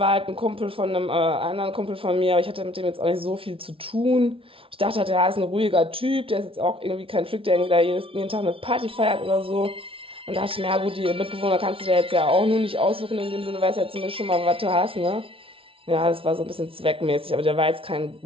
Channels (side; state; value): left; late; 0.26 ms